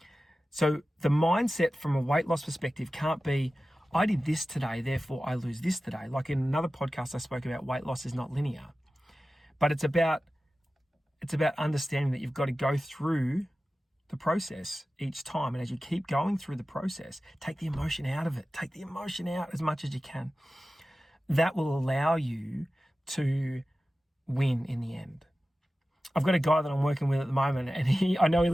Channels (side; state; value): both; normal; correlation 0.95